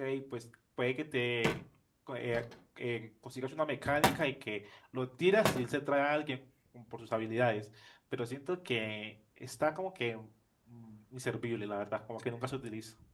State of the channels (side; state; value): both; identical; correlation 1.00